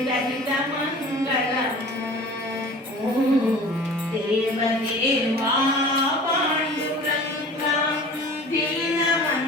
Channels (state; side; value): normal; both; correlation 0.42